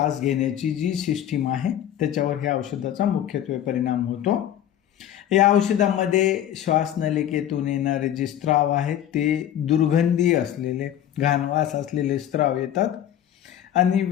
घेण्याची जी सिस्टीम आहे त्याच्यावर ह्या औषधाचा मुख्यत्वे परिणाम होतो. या औषधामध्ये श्वासनलिकेतून येणारे जे स्त्राव आहेत ते दुर्गंधी असलेले, घाणवास असलेले स्त्राव येतात आणि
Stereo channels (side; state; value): right; quieter; 11.0 dB